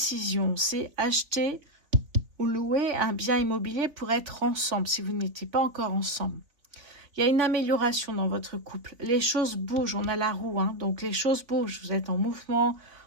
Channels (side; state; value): left; late; 3.7 ms